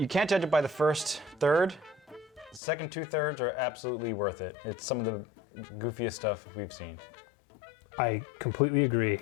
can't judge it by the first third. The second 2/3 are absolutely worth it. It's some of the goofiest stuff we've seen. I completely agree.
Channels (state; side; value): drops out; right; at 2.6 s